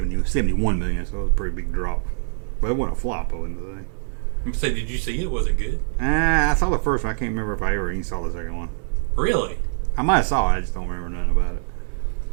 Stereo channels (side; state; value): left; silent; 63 dB below the other